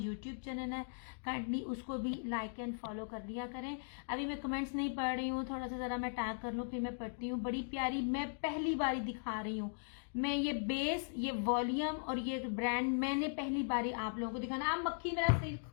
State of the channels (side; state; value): right; silent; digital silence